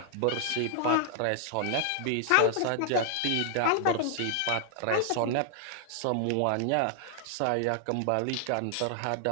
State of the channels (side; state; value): both; different; correlation 0.00